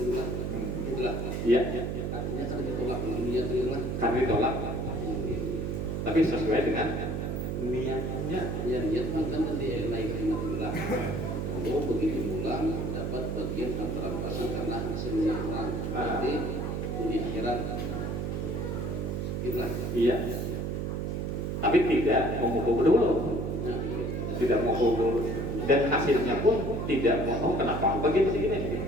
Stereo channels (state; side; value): noise; right; hum, 2 dB below the sound